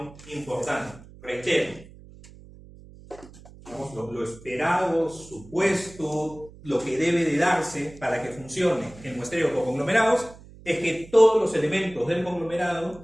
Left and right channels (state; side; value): noise; right; hum, 20 dB below the sound